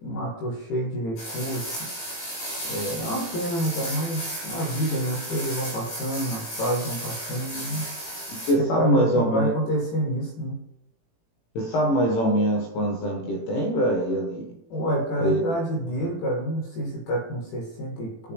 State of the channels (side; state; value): right; late; 18 ms